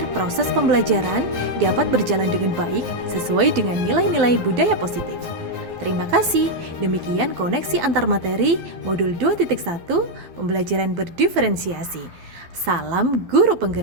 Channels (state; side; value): late; left; 12 ms